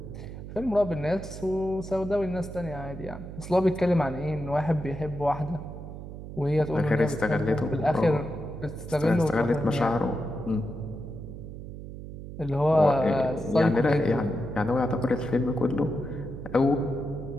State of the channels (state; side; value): noise; right; hum, 11 dB below the sound